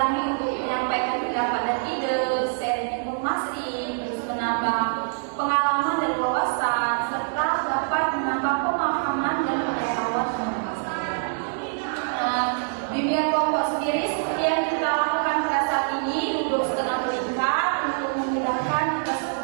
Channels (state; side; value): silent; left; digital silence